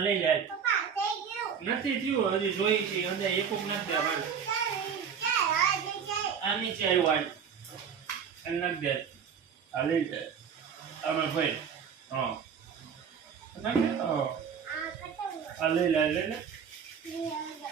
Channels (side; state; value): left; quieter; 7.2 dB